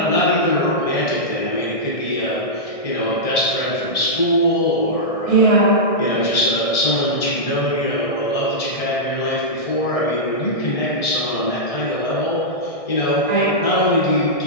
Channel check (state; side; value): late; right; 1.6 ms